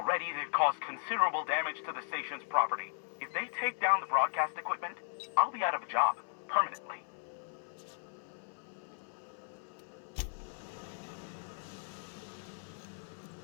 they've caused considerable damage to the station's property. If they take down the broadcast equipment, I'll be out of a job, permanently.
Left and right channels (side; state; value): right; silent; 53 dB below the other